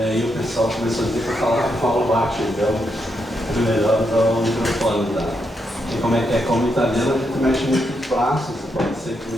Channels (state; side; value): normal; both; correlation 0.81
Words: o pessoal começou a dizer que eu falava baixo, então é melhor usar o microfone, tá? E como é que é? Como italiano a gente mexe muito os braços, pode ser que